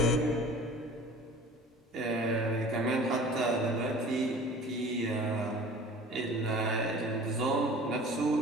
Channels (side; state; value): both; normal; correlation 0.44